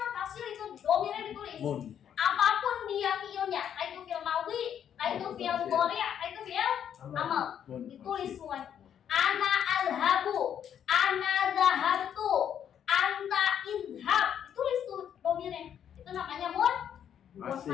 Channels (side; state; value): right; quieter; 9.1 dB